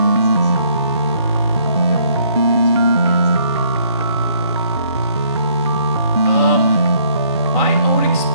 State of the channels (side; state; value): both; inverted; correlation -0.65